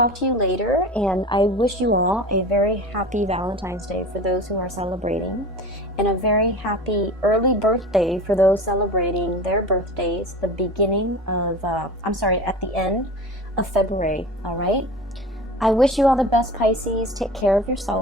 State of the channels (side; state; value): both; normal; correlation 0.34